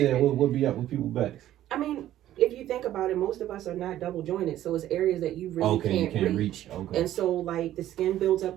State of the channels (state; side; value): quieter; left; 13.0 dB